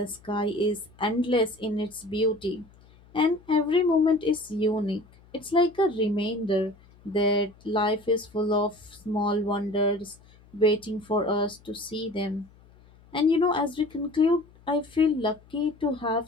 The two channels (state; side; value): noise; left; hum, 27 dB below the sound